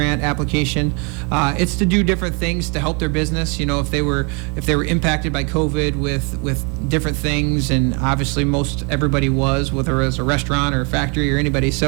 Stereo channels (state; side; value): quieter; left; 34.1 dB